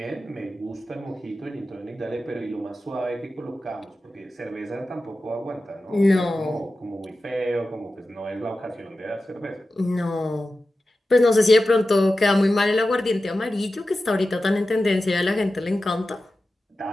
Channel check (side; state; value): both; normal; correlation 0.93